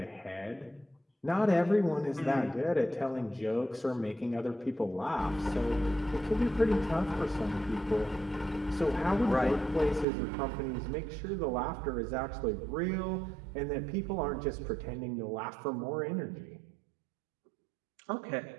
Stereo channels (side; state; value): left; drops out; at 10.1 s